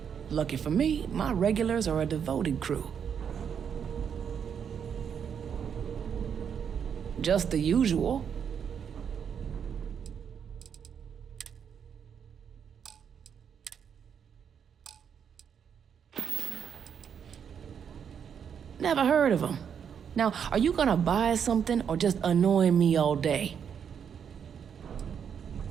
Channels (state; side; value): quieter; left; 7.6 dB